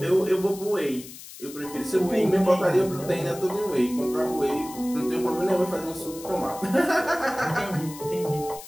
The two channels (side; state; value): left; noise; hiss, 15 dB below the sound